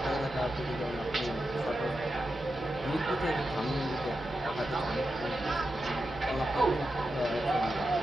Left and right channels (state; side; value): normal; both; correlation 0.89